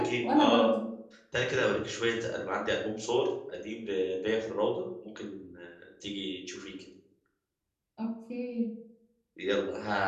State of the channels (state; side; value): identical; both; correlation 1.00